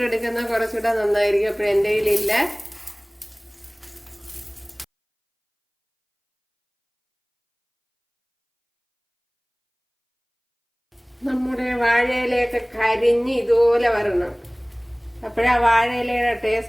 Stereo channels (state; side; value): identical; both; correlation 1.00